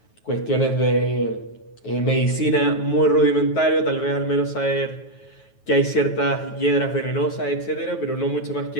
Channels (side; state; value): right; late; 9.3 ms